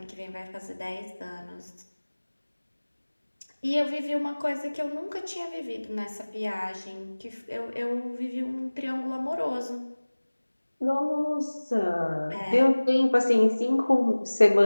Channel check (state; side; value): inverted; both; correlation -1.00